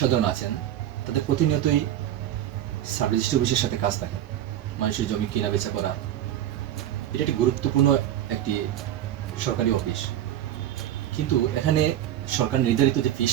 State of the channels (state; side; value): quieter; left; 11.8 dB